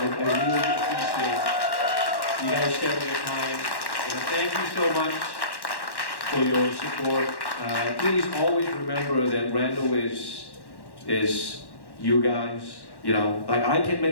really appreciate you guys sharing your time. And thank you so much for your support. Please always remember that RandoWis is you guys. You know, like I can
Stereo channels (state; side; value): late; right; 1.1 ms